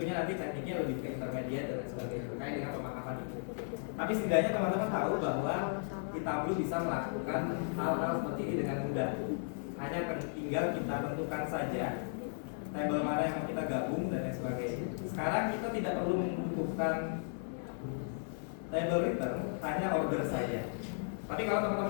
nanti tekniknya lebih ke intermediate dan sebagainya terkait dengan pemahaman itu. Tapi setidaknya teman-teman tahu bahwa kita belum bisa melakukan hal-hal seperti ini dengan mudah. Hanya tinggal kita tentukan saja table mana yang mau kita gabung dan lain sebagainya. Sekarang kita tidak perlu membutuhkan table return, hanya order saja. Tapi kalau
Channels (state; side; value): silent; right; digital silence